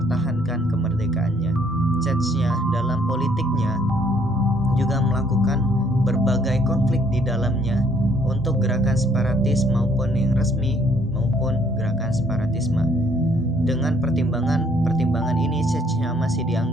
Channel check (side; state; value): both; normal; correlation 0.64